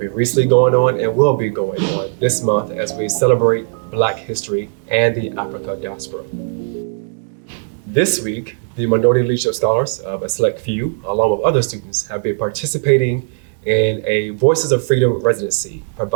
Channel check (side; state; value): left; silent; 64 dB below the other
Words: been recently going on and will be going on this month as we celebrate Black history and the Africa diaspora. This week, the Minority Leadership Scholars, a select few, along with other students, have been participating in a Voices of Freedom residency